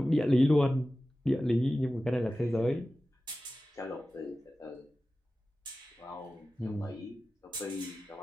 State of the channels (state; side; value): normal; both; correlation 0.95